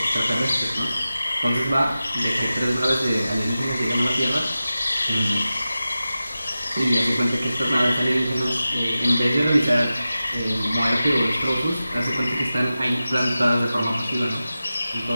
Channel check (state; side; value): inverted; both; correlation -0.94